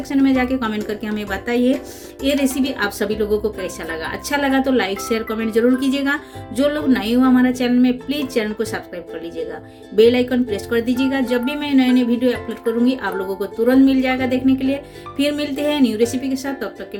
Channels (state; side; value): identical; both; correlation 1.00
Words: में जाके कमेंट करके हमें बताइए ये रेसिपी आप सभी लोगों को कैसा लगा। अच्छा लगा तो लाइक शेयर कमेंट जरूर कीजिएगा। जो लोग नए हो हमारा चैनल में, प्लीज चैनल को सब्सक्राइब कर लीजिएगा, बेल आइकन प्रेस कर दीजिएगा। जब भी मैं नए नए वीडियो अपलोड करूंगी आप लोगों को तुरंत मिल जाएगा देखने के लिए। फिर मिलते हैं न्यू रेसिपी के साथ, तब तक के